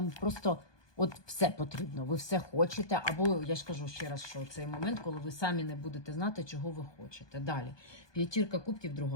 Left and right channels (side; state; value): right; late; 1.2 ms